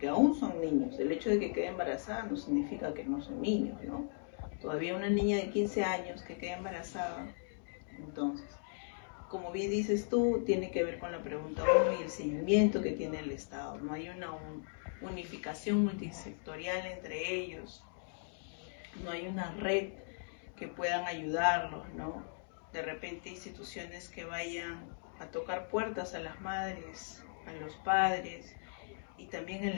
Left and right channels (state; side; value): silent; right; digital silence